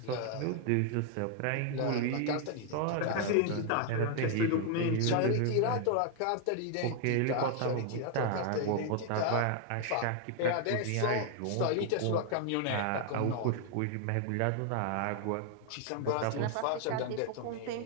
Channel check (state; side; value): different; both; correlation 0.00